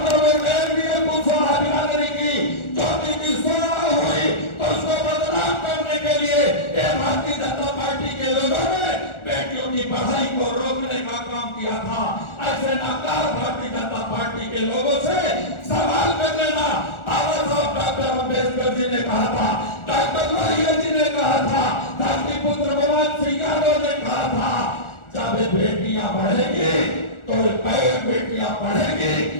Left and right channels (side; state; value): right; late; 1.4 ms